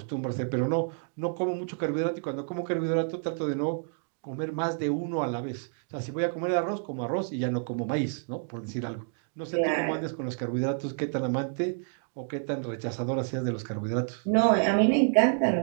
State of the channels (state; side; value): silent; left; digital silence